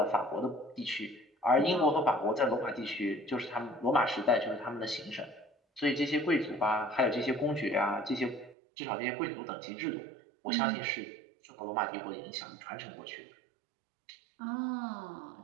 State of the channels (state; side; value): drops out; left; at 8.6 s